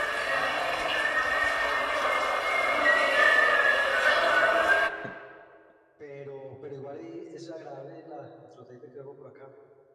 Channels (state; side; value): identical; both; correlation 1.00